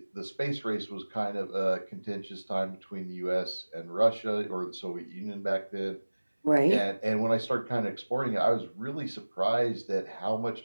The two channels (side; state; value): both; inverted; correlation -1.00